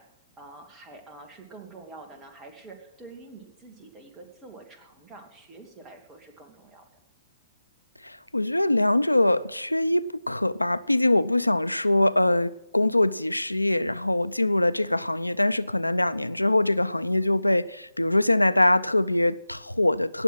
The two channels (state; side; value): inverted; both; correlation -0.97